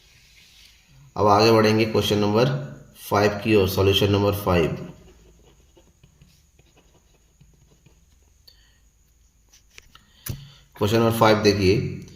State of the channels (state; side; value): identical; both; correlation 1.00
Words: अब आगे बढ़ेंगे क्वेश्चन नंबर 5 की ओर, सॉल्यूशन नंबर 5। क्वेश्चन नंबर 5 देखिए,